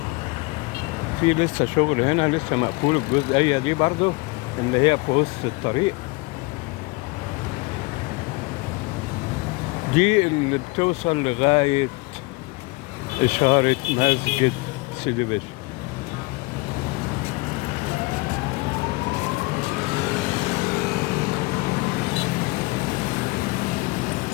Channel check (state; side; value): quieter; right; 24.8 dB